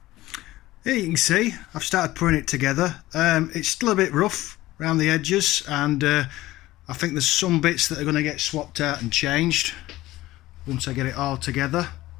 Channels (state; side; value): quieter; right; 17.0 dB